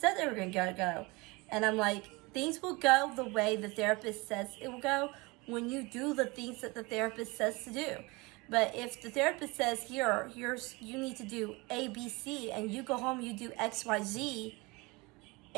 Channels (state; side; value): quieter; left; 25.2 dB